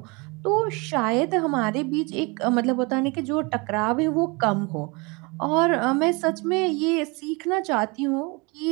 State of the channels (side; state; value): left; quieter; 28.0 dB